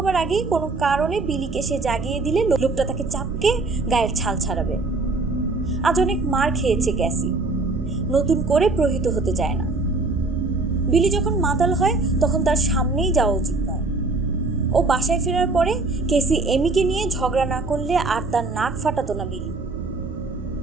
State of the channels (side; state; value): left; quieter; 3.5 dB